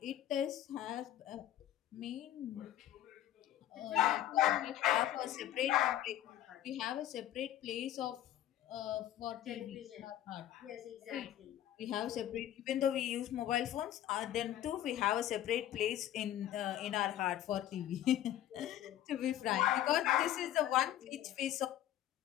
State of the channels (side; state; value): right; quieter; 12.3 dB